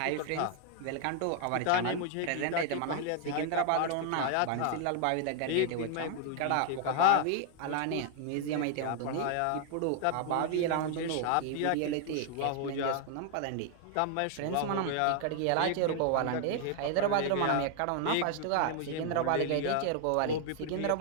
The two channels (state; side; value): different; both; correlation 0.00